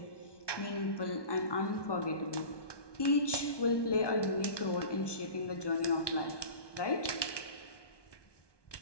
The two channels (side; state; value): right; late; 1.2 ms